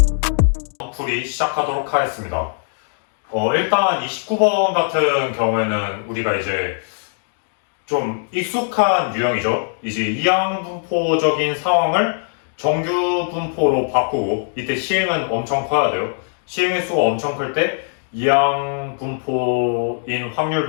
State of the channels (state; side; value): silent; right; digital silence